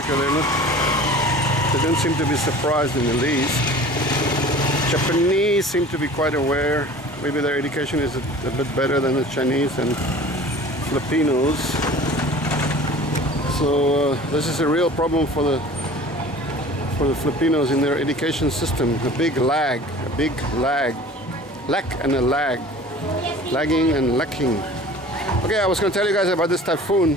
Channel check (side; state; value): both; normal; correlation 0.43